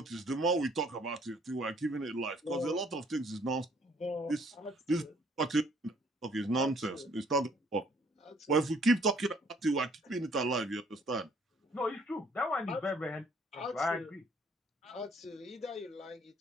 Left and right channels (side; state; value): both; normal; correlation 0.62